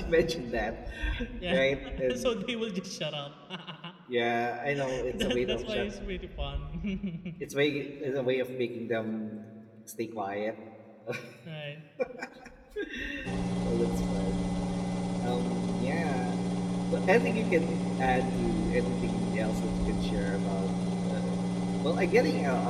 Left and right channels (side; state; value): both; identical; correlation 1.00